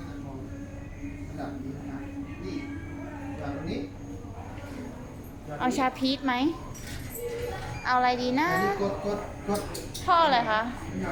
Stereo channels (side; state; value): both; identical; correlation 1.00